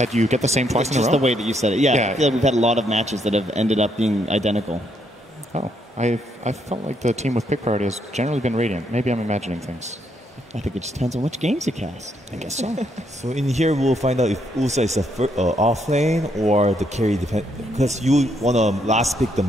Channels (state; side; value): normal; both; correlation 0.74